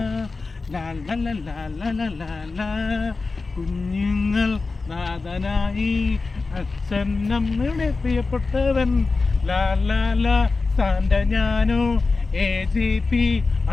ലാ ലാ ലാ ലാ ലാ ലാ ലാ ലാ. കുഞ്ഞുങ്ങൾ നാഥനായി അച്ഛൻ നമ്മളുടെ പ്രിയപ്പെട്ടവൻ. ലാ ലാ ലാ സാന്റ ഞാനോ AGP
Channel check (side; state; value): right; quieter; 3.9 dB